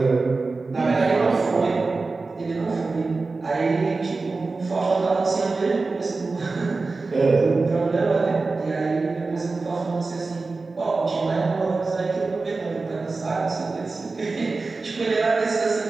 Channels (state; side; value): quieter; left; 3.8 dB